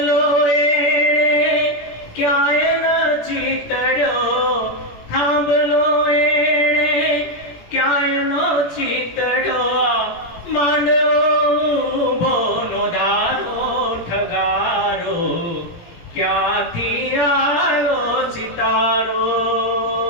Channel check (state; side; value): late; right; 17 ms